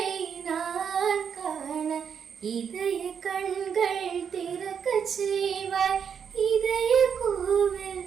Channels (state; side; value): quieter; left; 7.3 dB